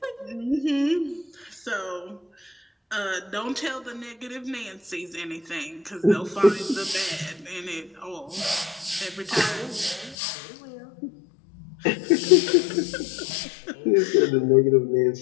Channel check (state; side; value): drops out; right; at 10.2 s